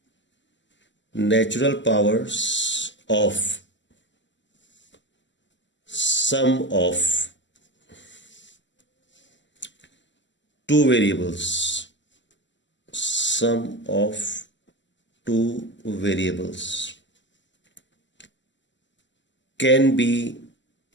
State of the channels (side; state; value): right; late; 0.54 ms